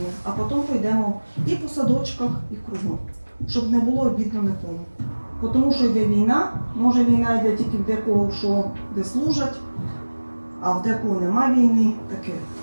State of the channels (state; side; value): inverted; both; correlation -1.00